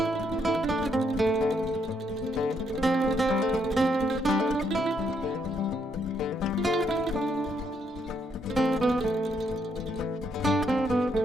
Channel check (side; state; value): both; normal; correlation 0.74